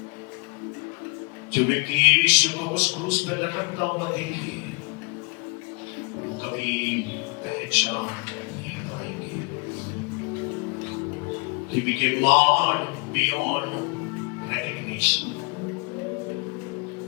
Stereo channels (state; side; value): quieter; right; 34.4 dB